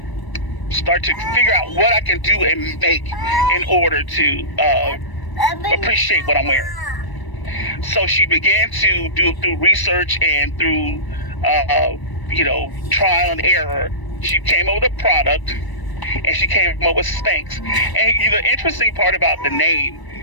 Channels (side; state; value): right; late; 1.0 ms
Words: start to figure out what I can do and make in order to appreciate what I'm wearing. So she began to do through research and through trial and error. She came up with a product, and she came up with Spanx. And the interesting part about the